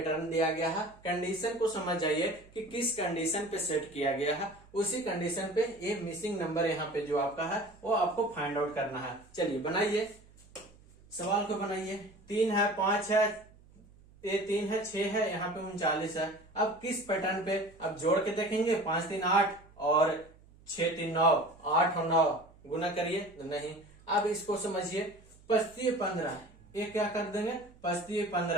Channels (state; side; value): noise; right; hum, 26 dB below the sound